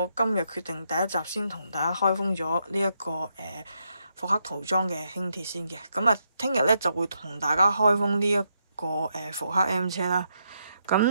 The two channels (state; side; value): inverted; both; correlation -0.80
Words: 今日決定第一集先同大家開封咗呢一個復刻塗裝嘅輕鐵先嘅。咁啊，聽日咧就會同大家開封呢一個復刻 M 車啦。